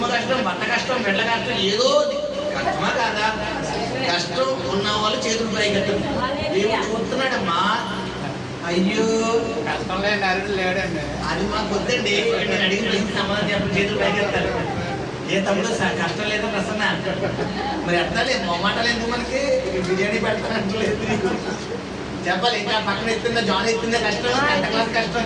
కష్టం, భర్త కష్టం, బిడ్డ కష్టం, ఏదో కష్టమా కాదా? కష్టం ఉన్న వాళ్ళు చేతులు పైకెత్తారు. దేవుడు చూస్తున్నాడమ్మా. అయ్యో కష్టం లేని అరుడు లేడండి. అది మాకు వద్దండి. నేను అడిగిన ప్రశ్న సమాధానం చెప్పి చేతులు పైకెత్తారు. ఏ తమ్ముడు కష్టం లేదా ప్రసన్న? మరి ఎత్తాలి, మొమ్మాటాలు ఎందుకు మనకి? బిర్యానీ పెడతానంటలేదు చెప్పాలి. ఇంకా పక్కన ఎత్తుందా జాన్ ఎత్తుందా కష్టం, 10th క్లాస్ కష్టం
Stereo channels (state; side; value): identical; both; correlation 1.00